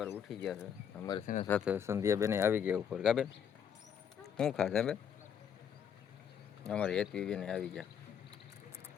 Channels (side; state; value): right; quieter; 8.2 dB